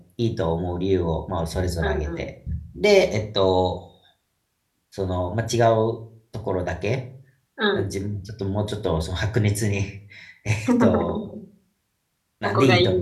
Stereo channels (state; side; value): identical; both; correlation 1.00